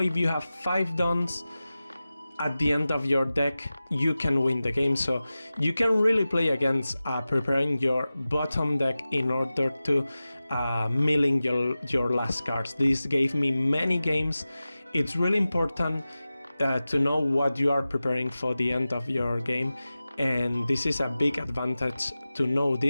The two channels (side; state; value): both; inverted; correlation -0.96